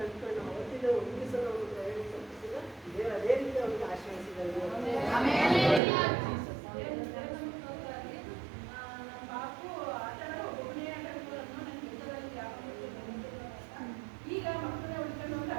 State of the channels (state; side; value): drops out; left; at 5.8 s